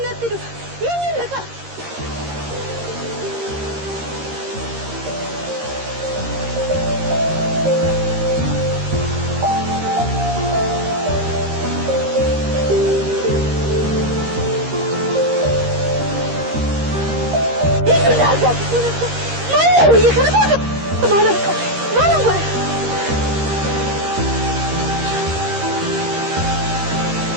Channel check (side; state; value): left; late; 13 ms